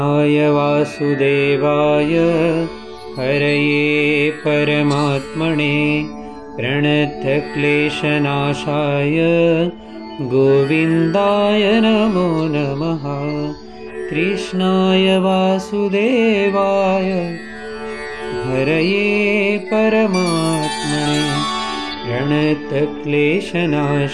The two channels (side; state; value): both; identical; correlation 1.00